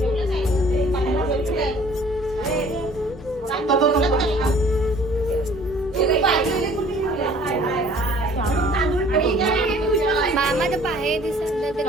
मामा तर पाहे दिसत ते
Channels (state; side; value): normal; both; correlation 0.53